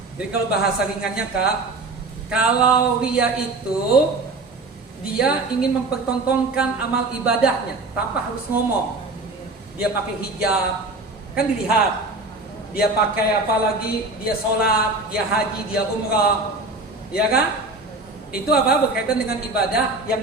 Jadi kalau bahasa ringannya Kak, kalau riya itu dia ingin mempertontonkan amal ibadahnya tanpa harus ngomong. Dia pakai hijab, kan dilihat. Dia pakai apa lagi? Dia sholat, dia haji, dia umrah, ya kan? Itu apa? Berkaitan dengan ibadah yang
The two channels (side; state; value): left; quieter; 3.2 dB